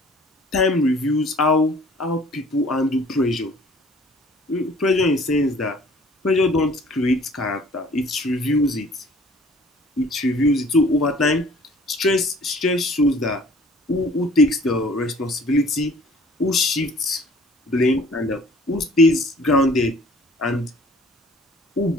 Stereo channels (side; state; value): both; normal; correlation 0.53